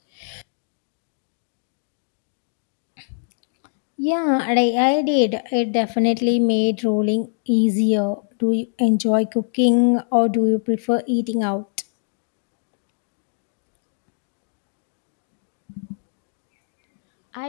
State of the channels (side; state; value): right; silent; digital silence